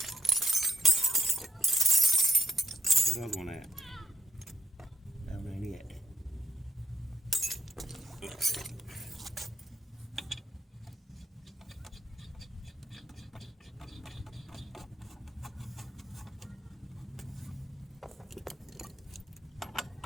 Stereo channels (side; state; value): both; normal; correlation 0.79